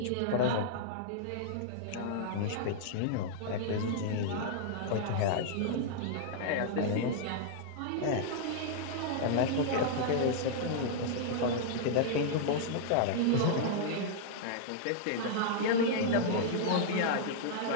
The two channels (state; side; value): different; both; correlation -0.01